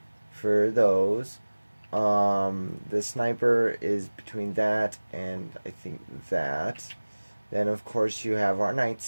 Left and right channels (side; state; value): both; inverted; correlation -1.00